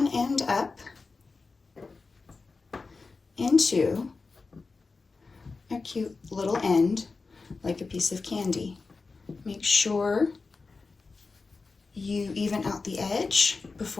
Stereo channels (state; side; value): quieter; right; 4.1 dB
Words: end up into a cute little end, like a piece of candy. Make sure you even out the edge